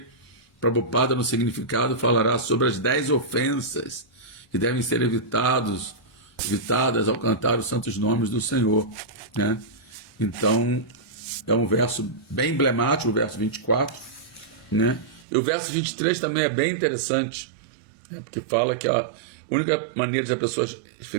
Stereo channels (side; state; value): left; drops out; at 15.2 s